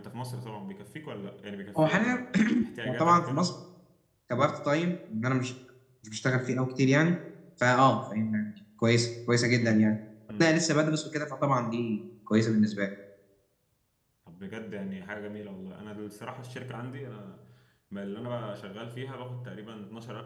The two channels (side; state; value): both; identical; correlation 1.00